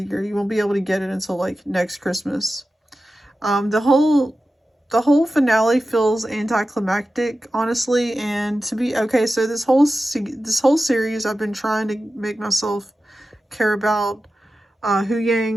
the year, you won't be able to get it until like next Christmas. The whole finale feels anticlimactic, honestly, and to be okay. So this whole series, I've been trying to make myself care about Hu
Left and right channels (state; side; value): normal; both; correlation 0.93